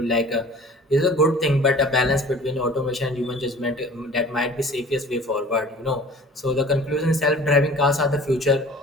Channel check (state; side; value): normal; both; correlation 0.45